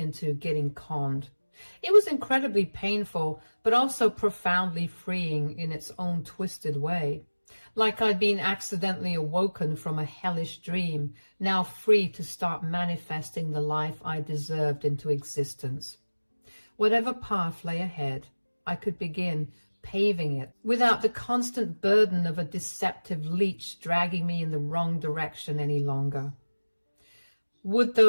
getting conned. It was incredibly painful, but also profoundly freeing in its own twisted way. Like I'd been accidentally awoken from a hellish dream, now free to start manifesting the life I deserved into existence. Whatever path lay ahead, I could begin paving it without the constant burden of a deceptive leech dragging me in the wrong direction any longer. Would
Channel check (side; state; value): both; inverted; correlation -1.00